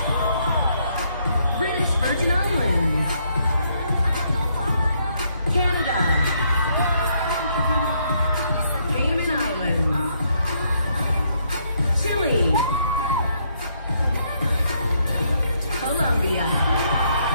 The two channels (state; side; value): inverted; both; correlation -0.72